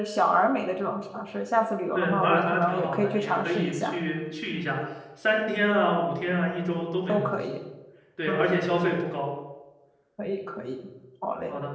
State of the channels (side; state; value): both; identical; correlation 1.00